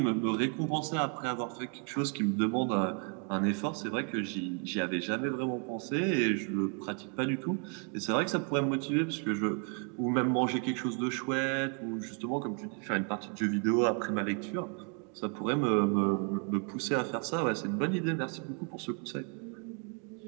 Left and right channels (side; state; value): left; quieter; 39.7 dB